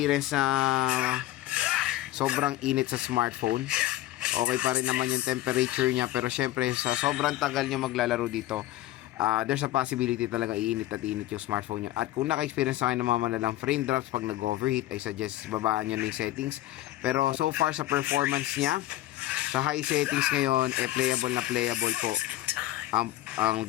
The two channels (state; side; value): quieter; right; 15.4 dB